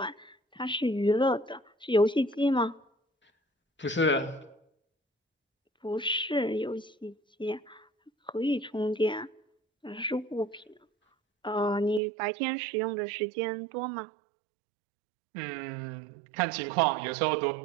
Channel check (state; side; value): drops out; left; at 12.0 s